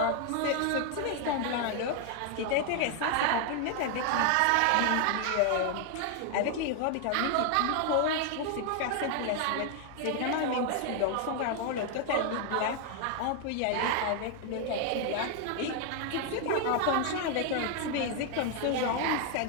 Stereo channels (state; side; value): different; both; correlation 0.00